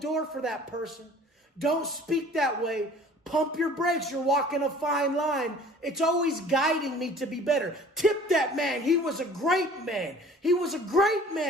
for that person. Don't speak that way. Pump your brakes. You're walking a fine line. It's always guiding me to be better. Tip that man. He was a great man. He was a great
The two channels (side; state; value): both; normal; correlation 0.49